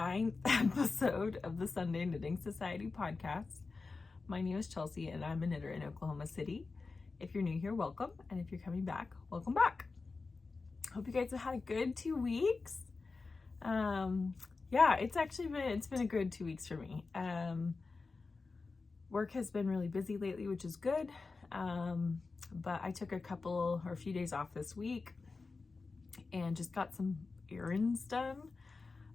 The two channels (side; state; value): right; quieter; 4.1 dB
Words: episode of the Sunday Knitting Society podcast. My name is Chelsea and I'm a knitter in Oklahoma City. If you're new here, welcome, and if you're coming back, welcome back. Hope you guys have had a good 2 weeks. Yeah, it's been a good 2 weeks for me. Work has been really busy lately, which is good. But I took a few days off this week and just got some errands done.